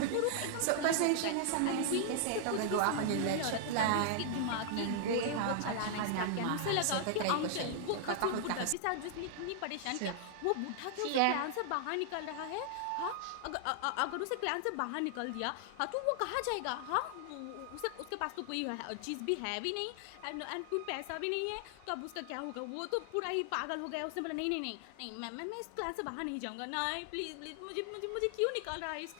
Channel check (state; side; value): different; both; correlation 0.00